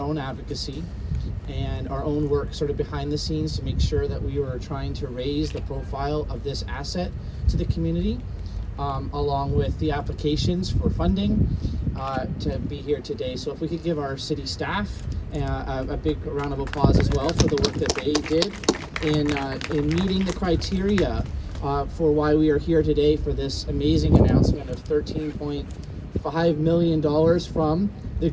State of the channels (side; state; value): both; identical; correlation 1.00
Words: advocacy and our own work sort of behind the scenes to make sure that we were trying to raise the profile of this asset to the community, along with the applications for funding to be here today. So if we could give our city staff a big round of applause as well for the work that they did in meeting the criteria for why we are here today for this amazing announcement of $13.5 million from the